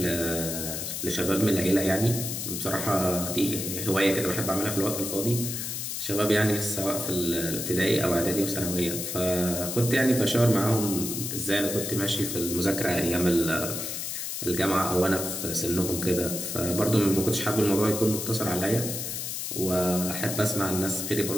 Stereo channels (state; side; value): noise; left; hiss, 4 dB below the sound